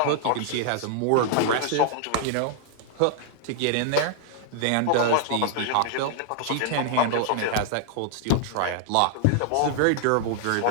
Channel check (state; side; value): different; both; correlation 0.00